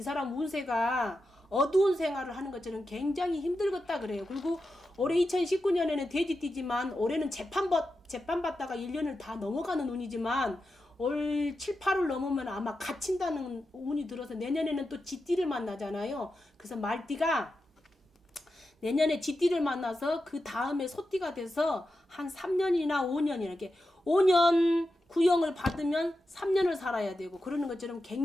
사람 운세가 어두운 생활을 하는 것처럼 굉장히 힘들겠다 그래요. 그리고 올해 2019년에는 돼지띠지만 올해는 재판받다가 1년을 다 넘어가는 운이지만 올 7, 8월 넘으면 아마 갇힌다는 운이 들어서 내년에는 또 쥐띠를 만나잖아요. 그래서 말띠가 내년에 쥐띠를 만나서 그 다음에 소띠가 돼서 한 3년이나 5년이나 이렇게 5년 구형을 받으면 3년을 살아야 되고 그러는 것처럼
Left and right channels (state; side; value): normal; both; correlation 0.90